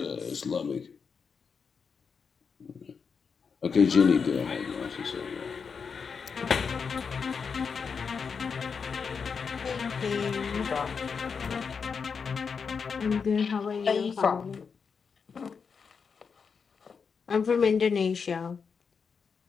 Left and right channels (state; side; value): quieter; right; 5.8 dB